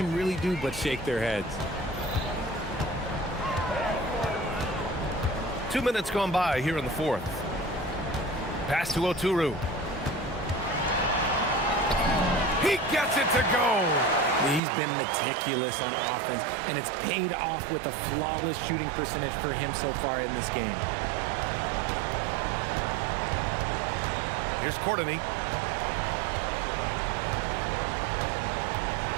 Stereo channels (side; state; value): left; drops out; at 14.6 s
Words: really do but shake their heads. 2 minutes gone by here in the fourth. Pass to Oturu. He gets it to go. He's been meticulous on offense, and it's paid off with a flawless shooting percentage for him so far in this game. Here's Courtney.